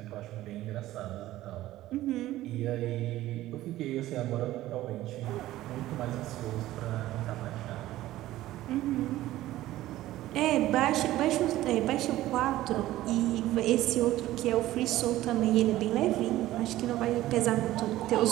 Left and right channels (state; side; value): quieter; left; 15.4 dB